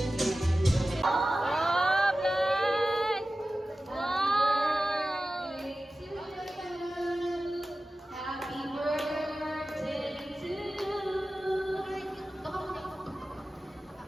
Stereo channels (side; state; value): both; normal; correlation 0.95